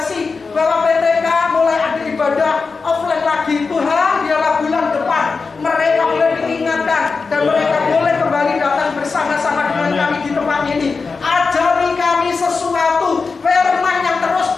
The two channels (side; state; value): right; quieter; 4.6 dB